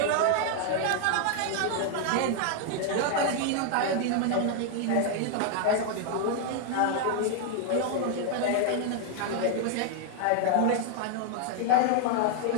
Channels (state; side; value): different; both; correlation 0.00